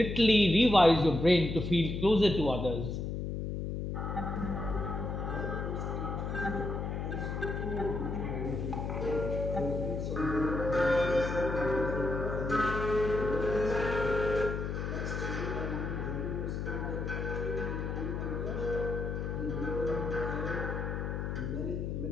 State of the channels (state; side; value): noise; left; hum, 3 dB below the sound